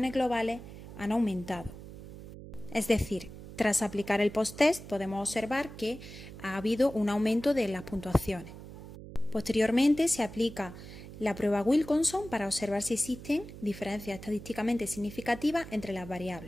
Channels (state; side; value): noise; right; hum, 14 dB below the sound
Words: globales han aumentado. Es decir, tras aplicar el post-test podemos observar que ha habido un aumento de las puntuaciones. Posteriormente se aplica la prueba Wilcoxon para observar si existen diferencias estadísticamente significativas entre las